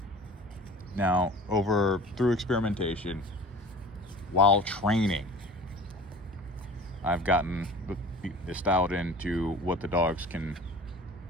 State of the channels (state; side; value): normal; both; correlation 0.42